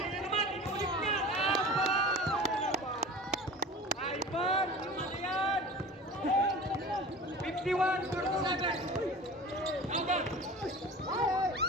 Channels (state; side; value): normal; both; correlation 0.37